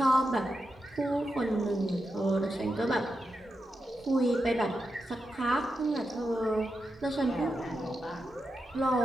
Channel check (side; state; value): both; normal; correlation 0.88